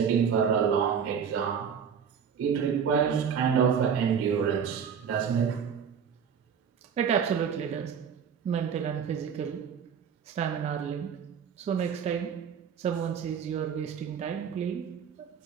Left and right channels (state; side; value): quieter; left; 7.3 dB